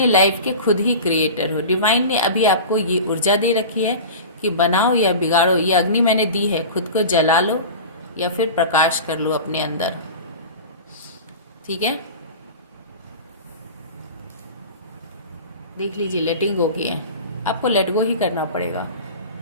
लाइफ के खुद ही क्रिएटर हो। डिवाइन ने अभी आपको ये ऊर्जा दे रखी है कि बनाओ या बिगाड़ो। ये अग्नि मैंने दी है, खुद को जला लो या फिर प्रकाश कर लो अपने अंदर, ठीक है। देख लीजिए, लेटिंग गो की है, आपको लेट गो ही करना पड़ेगा।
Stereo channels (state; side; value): inverted; both; correlation -0.33